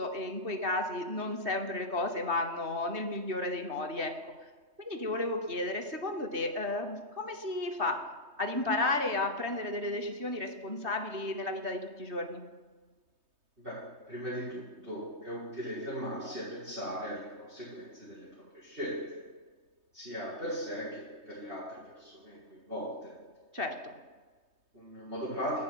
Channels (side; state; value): left; late; 3.2 ms